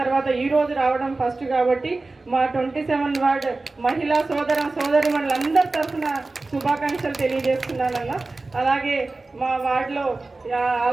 ఈరోజు రావడం ఫస్ట్ కాబట్టి మా 27 వార్డు మహిళా సోదరి వాళ్ళందరి తరఫున శుభాకాంక్షలు తెలియజేస్తున్నానన్న. అలాగే మా వార్డులో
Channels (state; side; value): quieter; left; 3.4 dB